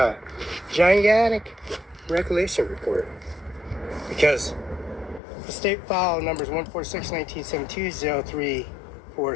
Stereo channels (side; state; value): right; drops out; at 5.2 s